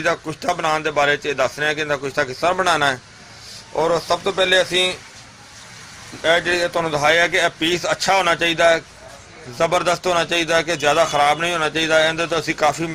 का कुश्ता बनाने के बारे च दस रहे हैं कि इहदा कुश्ता किस तरह बनाना है। और सब तो पहले असीं जो तुहानूं दिखाया कि पीस अच्छा होना चाहिए, ज़बरदस्त होना चाहिए कि ज़्यादा खराब नहीं होना चाहिए। इहदे तो असीं काफ़ी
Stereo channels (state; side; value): identical; both; correlation 1.00